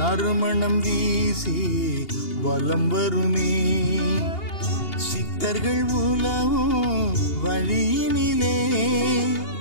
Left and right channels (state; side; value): late; right; 2.8 ms